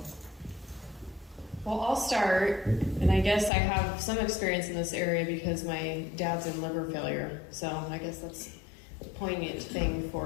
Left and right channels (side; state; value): right; drops out; at 3.5 s